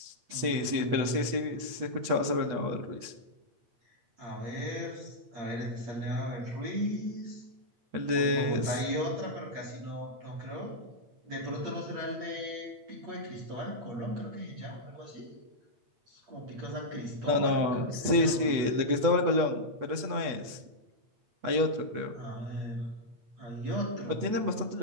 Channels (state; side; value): late; left; 8.2 ms